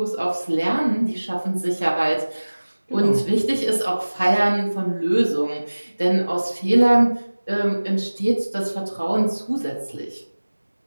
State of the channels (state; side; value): inverted; both; correlation -1.00